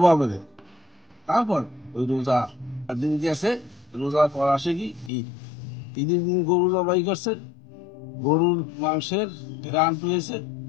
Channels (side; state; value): right; drops out; at 5.1 s